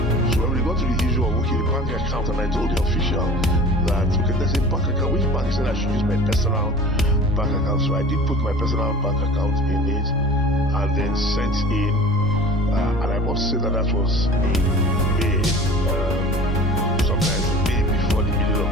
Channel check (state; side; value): normal; both; correlation 0.41